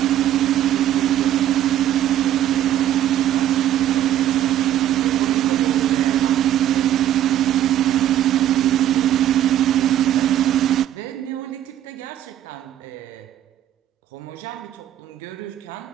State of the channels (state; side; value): quieter; left; 11.8 dB